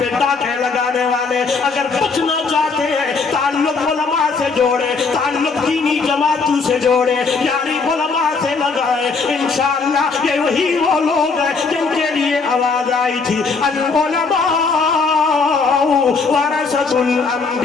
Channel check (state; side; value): quieter; right; 4.6 dB